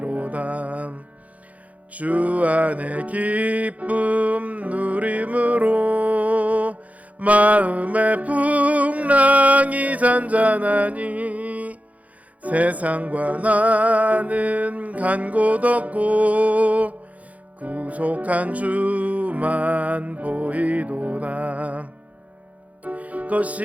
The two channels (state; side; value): late; left; 0.070 ms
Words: 주 안에 기쁨 누림으로 마음의 풍랑이 잔잔하니 세상과 나는 간 곳 없고 구속한 주만 보이도다.